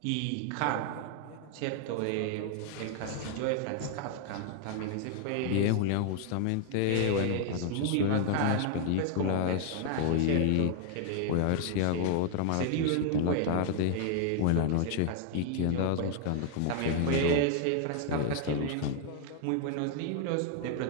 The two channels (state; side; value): different; both; correlation 0.00